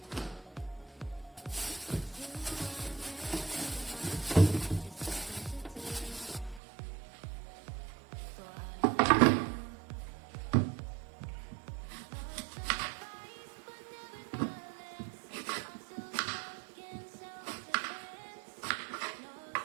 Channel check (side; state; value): left; drops out; at 6.6 s